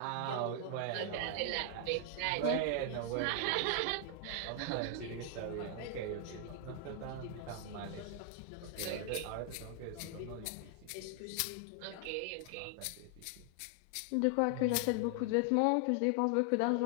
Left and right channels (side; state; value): both; different; correlation 0.00